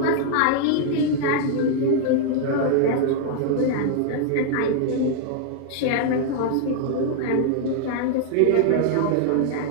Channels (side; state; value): both; different; correlation 0.00